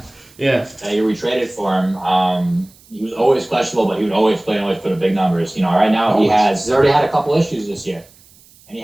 you retraded for him. He was always questionable, but he would always play and always put up big numbers. Right now he's already had a couple issues this year, and he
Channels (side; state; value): right; noise; hiss, 27 dB below the sound